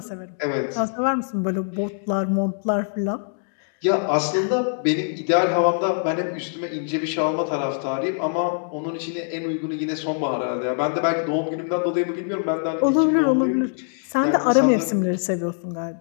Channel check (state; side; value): silent; right; 63 dB below the other